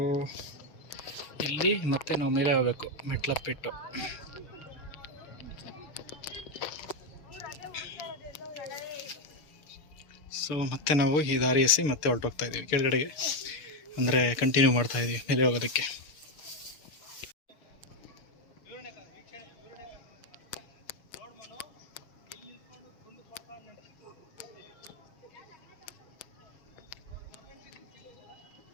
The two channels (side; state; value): right; late; 6.7 ms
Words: ಇಲ್ಲಿ ಮತ್ತೆ ನಾವು ಮೇಲೆ ಹೋಗಬೇಕು ಮೆಟ್ಲತ್ಬಿಟ್ಟು. ಸೊ ಮತ್ತೆ ನಾವು ಈ ದಾರಿ ಎಸಿ ಮತ್ತೆ ಹೊರಟೋಗ್ತಾ ಇದ್ದೀವಿ ಕೆಳಗಡೆಗೆ, ಅಂದರೆ ಕಂಟಿನ್ಯೂ ಮಾಡ್ತಾ ಇದ್ದೀವಿ ಮೇಲೆ ಹೋಗೋದಕ್ಕೆ.